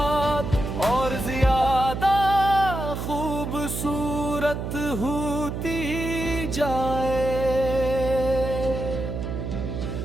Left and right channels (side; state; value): right; noise; hum, 4 dB below the sound